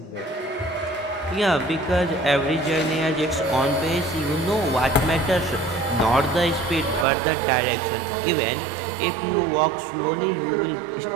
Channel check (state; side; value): drops out; left; at 7.1 s